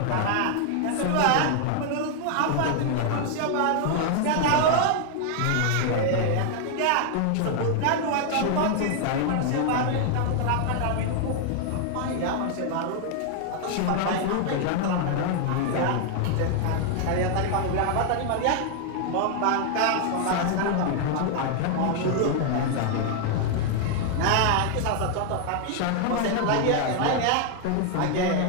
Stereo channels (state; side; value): different; both; correlation 0.00